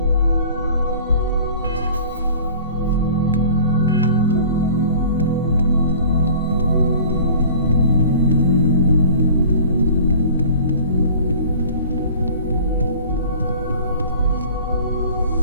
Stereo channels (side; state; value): both; inverted; correlation -0.45